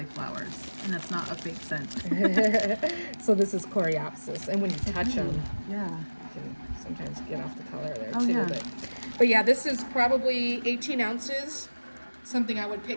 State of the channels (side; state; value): both; inverted; correlation -1.00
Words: flowers, and that's not a fake scent. so this is Coreopsis, and when you touch them, Yeah. you can sometimes get off the color there Oh, too. yeah. But yeah, this is probably 18 ounces. Something I would